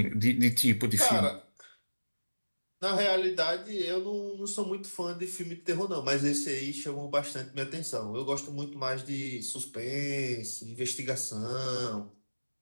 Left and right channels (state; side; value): inverted; both; correlation -1.00